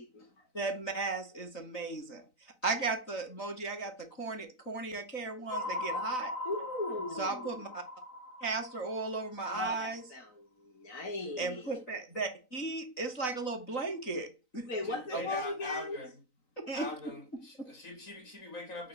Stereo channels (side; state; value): right; late; 3.9 ms